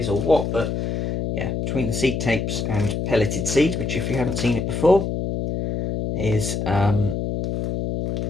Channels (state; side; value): noise; left; hum, 2 dB below the sound